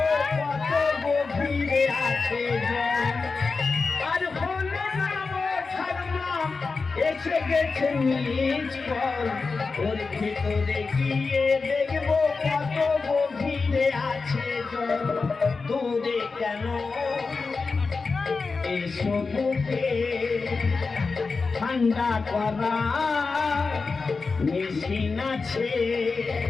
কত গভীরে আছে জল আর হলো না এসে গেছে নিজ পল ওর ভিতরে গিয়ে দেখবো কত গভীরে আছে জল দূরে কেন এসো বুকে ঠান্ডা করা মেশিন আছে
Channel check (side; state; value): right; quieter; 4.4 dB